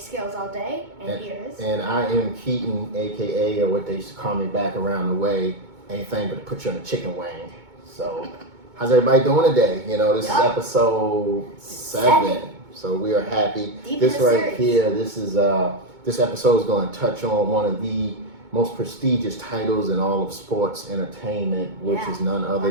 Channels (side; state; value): left; late; 2.2 ms